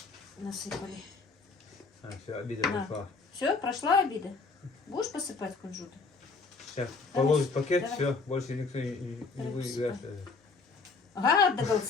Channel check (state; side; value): quieter; right; 4.3 dB